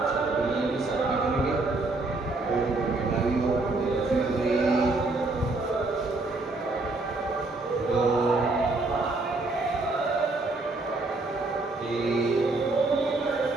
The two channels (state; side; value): quieter; left; 3.2 dB